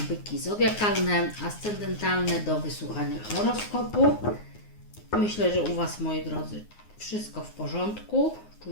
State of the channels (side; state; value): right; late; 9.6 ms